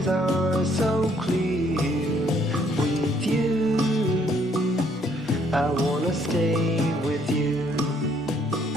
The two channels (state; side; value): normal; both; correlation 0.66